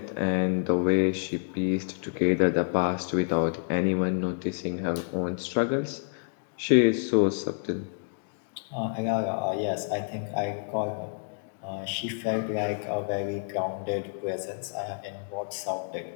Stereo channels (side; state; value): right; silent; digital silence